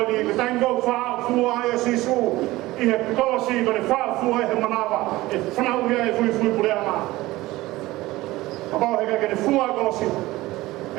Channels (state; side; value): quieter; left; 18.5 dB